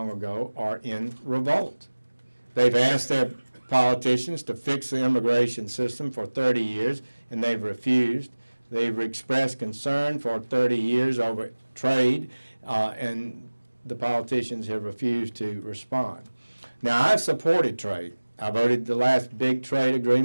ago, are in revolt. They've asked their politicians to fix the immigration system for 30 years, and they've refused. They've expressed concern for 30 years over trade, and the politicians have refused to respond. Now, I've supported trade. I voted the last big trade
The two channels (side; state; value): both; inverted; correlation -1.00